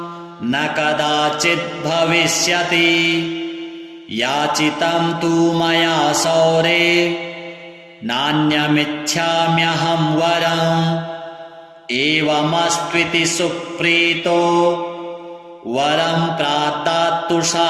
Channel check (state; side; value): identical; both; correlation 1.00